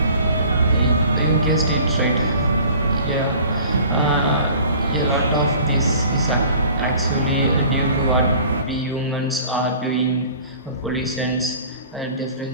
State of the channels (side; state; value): both; inverted; correlation -0.47